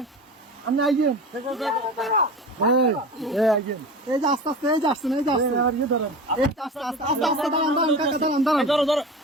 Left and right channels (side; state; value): both; normal; correlation 0.32